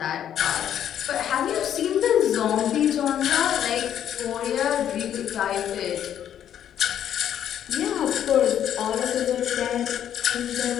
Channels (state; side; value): quieter; right; 10.1 dB